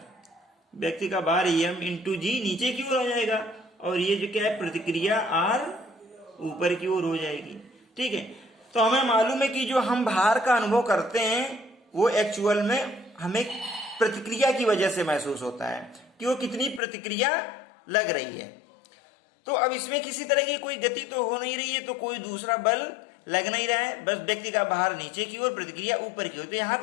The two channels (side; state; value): right; drops out; at 16.8 s